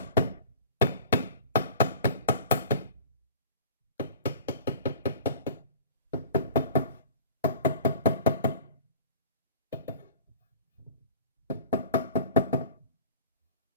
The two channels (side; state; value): both; inverted; correlation -0.44